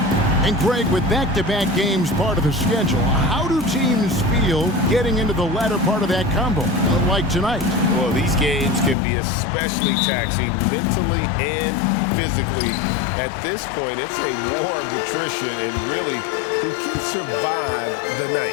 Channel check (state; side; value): drops out; right; at 9.0 s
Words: And Greg, with back-to-back games part of the schedule, how do teams feel getting into the latter part of that combo, like tonight? Well, these games can be especially taxing mentally and physically. At this point, it's a war of attrition, and really, who can survive the